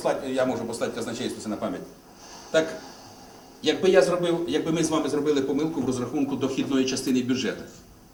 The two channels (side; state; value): both; identical; correlation 1.00